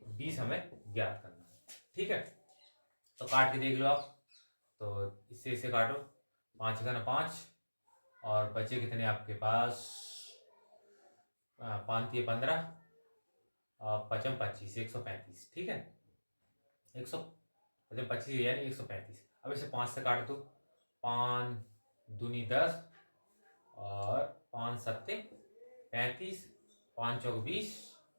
हमें ज्ञात करना है। ठीक है, तो काट के देख लो आप। तो इससे इसे काटो, 5 का 5 और बचे कितने आपके पास, 5 3 15 और 5 25 135। ठीक है, 125 यानी 135। अब इसे 5 से काट दो, 5 दूनी 10 और 5 सत्ते 35, 5 चौक 20,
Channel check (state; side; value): inverted; both; correlation -1.00